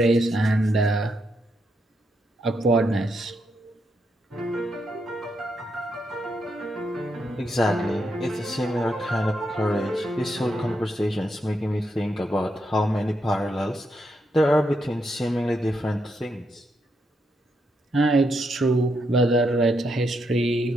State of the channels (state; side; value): normal; both; correlation 0.80